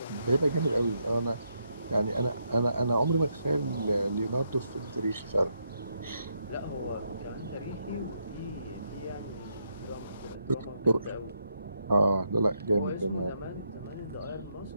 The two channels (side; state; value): both; inverted; correlation -0.79